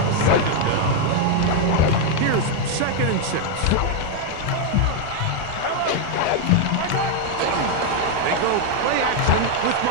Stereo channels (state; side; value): different; both; correlation 0.01